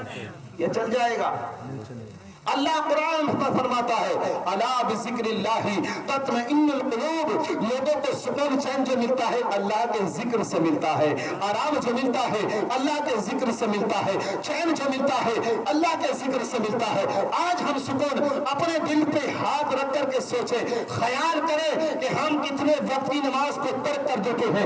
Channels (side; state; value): both; identical; correlation 1.00